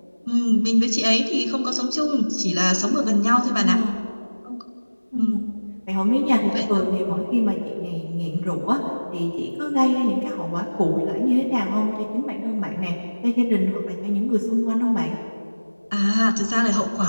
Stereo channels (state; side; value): inverted; both; correlation -1.00